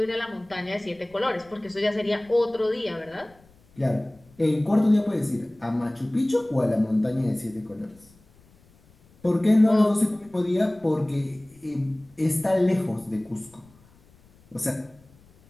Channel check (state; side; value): noise; left; rumble, 29 dB below the sound